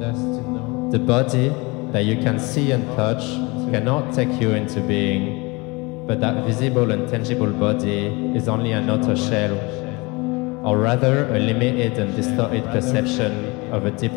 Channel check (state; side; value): quieter; right; 25.9 dB